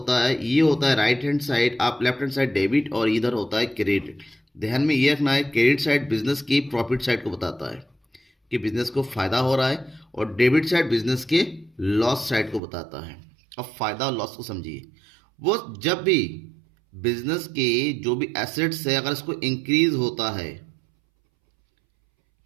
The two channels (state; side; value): drops out; left; at 12.6 s